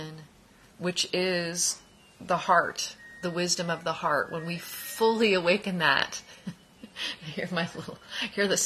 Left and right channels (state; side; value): identical; both; correlation 1.00